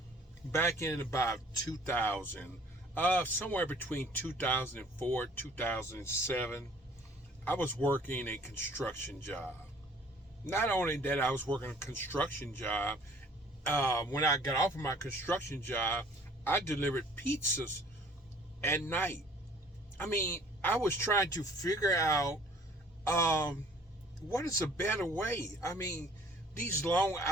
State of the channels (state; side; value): normal; both; correlation 0.54